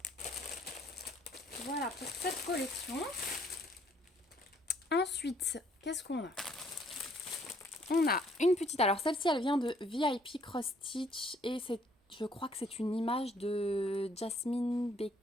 Voilà pour cette collection. Ensuite, qu'est-ce qu'on a? On a une petite... Alors celle-ci, elle vient de VIP Cross Stitch. Et je crois que c'est une image de Jasmine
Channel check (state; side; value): normal; both; correlation 0.64